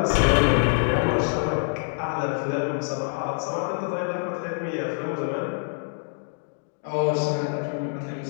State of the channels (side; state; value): right; silent; digital silence